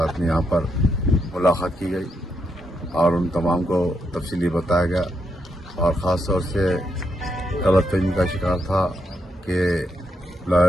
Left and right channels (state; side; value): normal; both; correlation 0.80